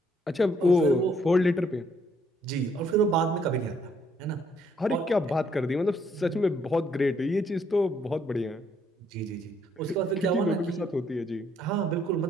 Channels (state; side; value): normal; both; correlation 0.69